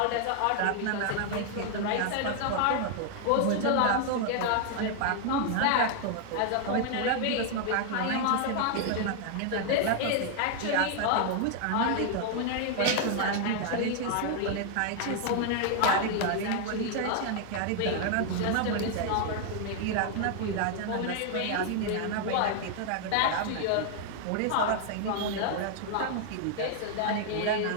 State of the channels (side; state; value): both; different; correlation 0.00